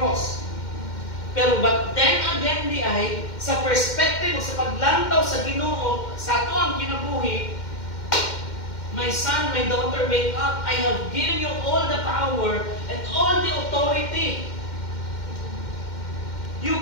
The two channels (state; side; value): late; right; 2.1 ms